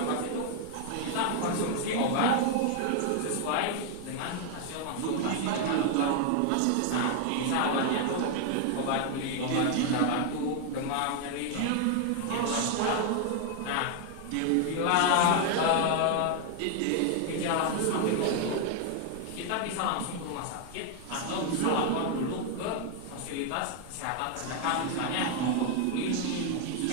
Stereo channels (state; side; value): different; both; correlation 0.00